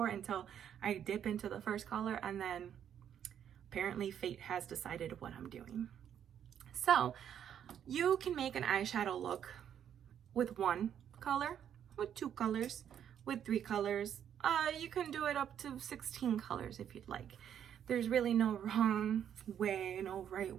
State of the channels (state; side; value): quieter; left; 9.3 dB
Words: until I dip into the first color, and then apparently fate has decided what I'm doing. So you can make an eyeshadow look with 1 color, with 2 colors, with 3 colors. You can do it up to 16 colors if you'd like. There's really no wrong way, no right